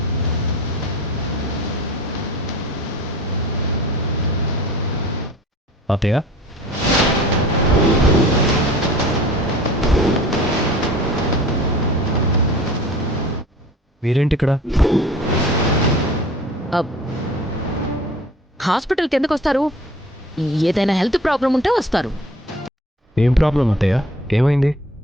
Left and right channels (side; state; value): both; normal; correlation 0.44